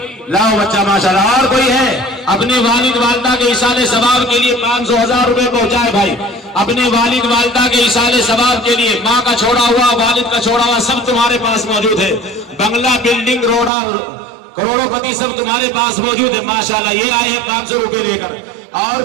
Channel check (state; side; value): drops out; left; at 13.7 s